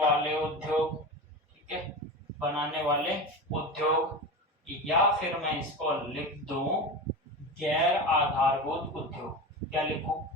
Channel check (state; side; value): normal; both; correlation 0.26